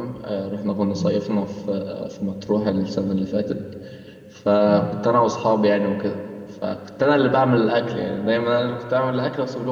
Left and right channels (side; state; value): both; identical; correlation 1.00